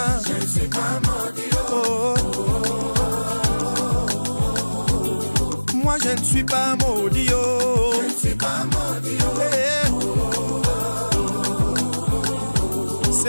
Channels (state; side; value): inverted; both; correlation -1.00